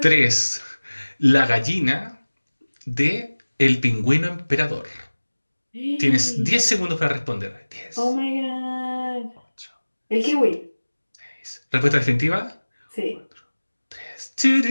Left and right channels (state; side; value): inverted; both; correlation -1.00